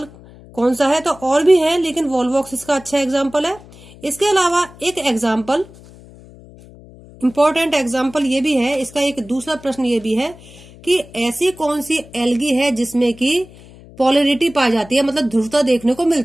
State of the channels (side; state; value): left; noise; hum, 21 dB below the sound